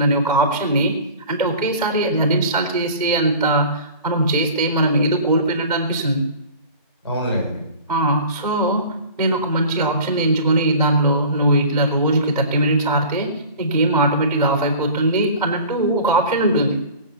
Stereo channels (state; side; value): inverted; both; correlation -0.42